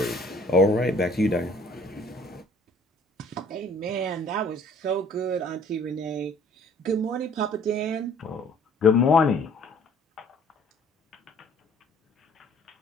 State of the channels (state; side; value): normal; both; correlation 0.55